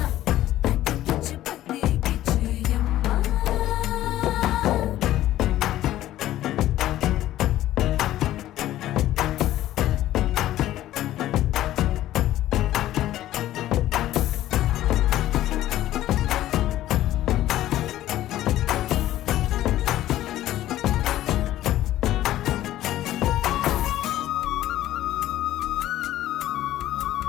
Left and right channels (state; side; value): quieter; right; 13.9 dB